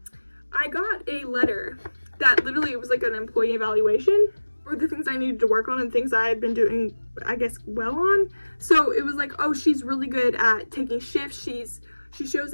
I got a letter that literally was like an employee evaluation for the things I needed to work on and things I had been doing, I guess, well on. So it was like, oh, she's really good at taking shifts. She shows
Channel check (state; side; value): inverted; both; correlation -1.00